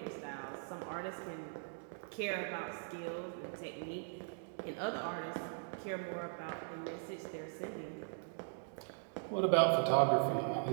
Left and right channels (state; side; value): silent; left; digital silence